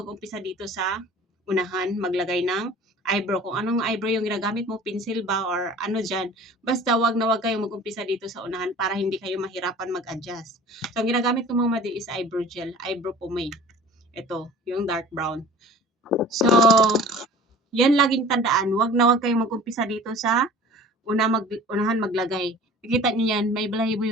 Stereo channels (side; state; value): both; normal; correlation 0.44